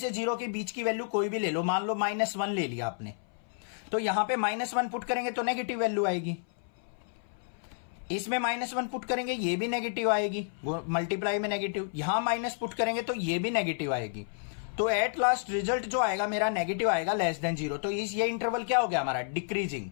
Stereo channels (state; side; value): silent; right; 57 dB below the other